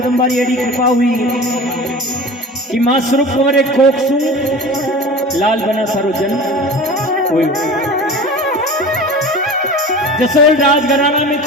री एडी कृपा हुई कि मां स्वरूप कंवर एक कोक सु लाल बना सारो जन्म हुई। जसोल राजघराना में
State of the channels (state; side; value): normal; both; correlation 0.36